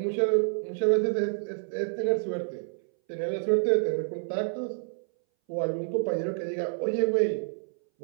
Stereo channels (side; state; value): left; silent; 59 dB below the other